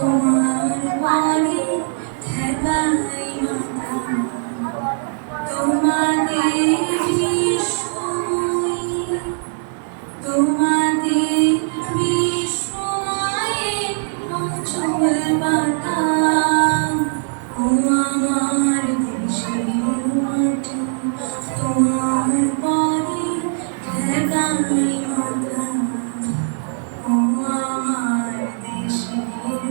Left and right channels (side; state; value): left; silent; 56 dB below the other